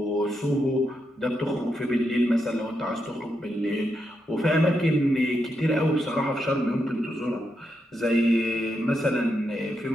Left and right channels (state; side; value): normal; both; correlation 0.83